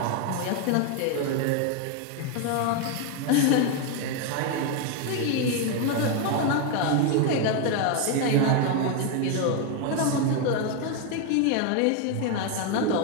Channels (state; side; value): different; both; correlation 0.01